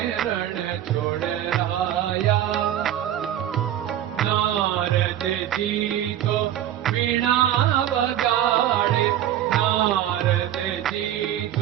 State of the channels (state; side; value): quieter; left; 11.6 dB